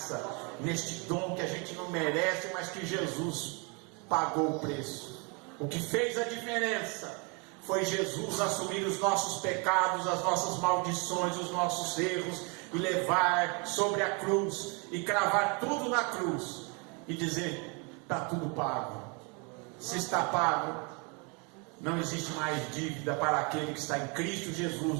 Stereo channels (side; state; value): left; quieter; 32.5 dB